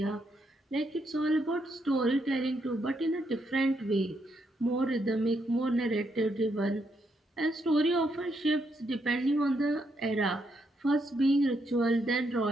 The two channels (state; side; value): normal; both; correlation 0.78